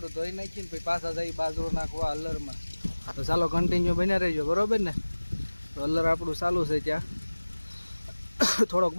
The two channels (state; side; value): inverted; both; correlation -1.00